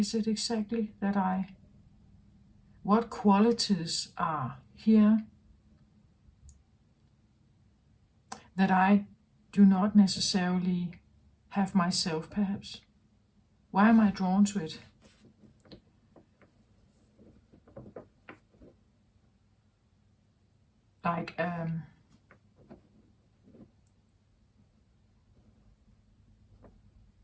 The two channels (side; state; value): both; identical; correlation 1.00